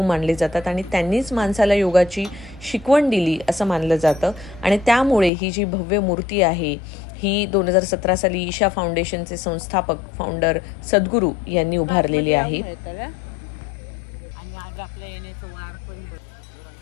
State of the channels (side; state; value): right; drops out; at 5.3 s